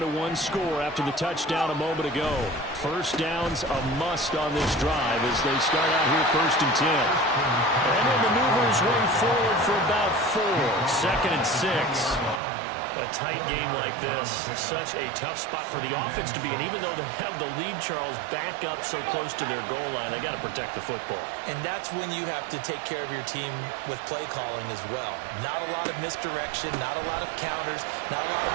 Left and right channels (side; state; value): left; drops out; at 12.4 s